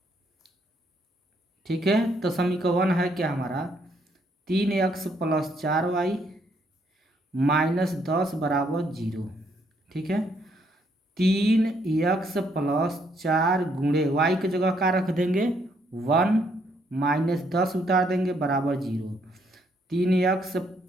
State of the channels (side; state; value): both; normal; correlation 0.71